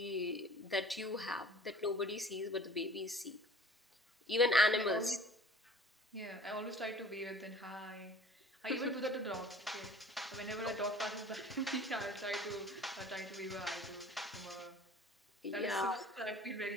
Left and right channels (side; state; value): both; normal; correlation 0.47